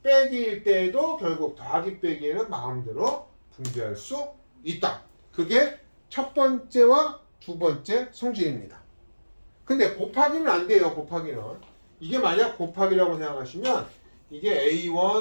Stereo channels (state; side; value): inverted; both; correlation -1.00